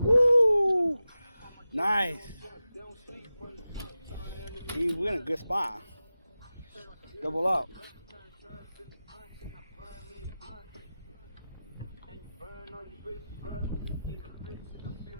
Woo! Nice. We're in a good spot. Double up.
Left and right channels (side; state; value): both; inverted; correlation -0.94